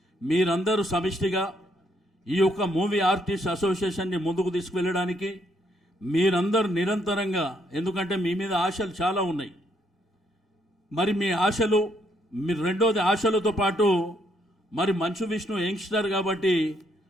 మీరందరూ సమిష్టిగా ఈ యొక్క మూవీ ఆర్టిస్ట్ అసోసియేషన్ని ముందుకు తీసుకువెళ్ళడానికి మీరందరూ నిరంతరంగా, ఎందుకంటే మీ మీద ఆశలు చాలా ఉన్నాయి, మరి మీ ఆశలు రెండోది ఆశలతో పాటు మరి మంచు విష్ణు యంగ్స్టర్ కాబట్టి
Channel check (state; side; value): normal; both; correlation 0.72